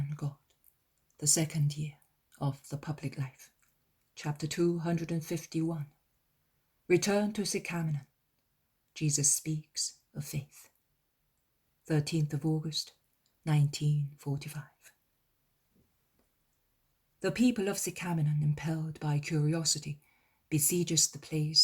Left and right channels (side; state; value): both; identical; correlation 1.00